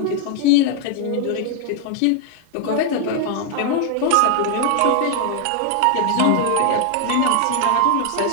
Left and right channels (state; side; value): different; both; correlation 0.00